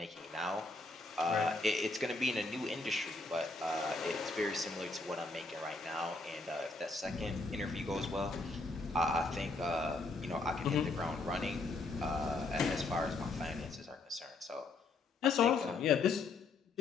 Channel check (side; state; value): right; quieter; 3.5 dB